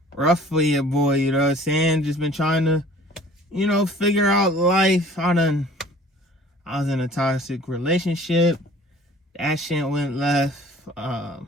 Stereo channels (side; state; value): both; normal; correlation 0.50